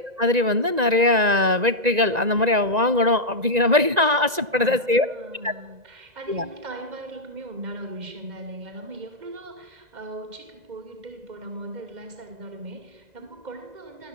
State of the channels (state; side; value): late; left; 1.9 ms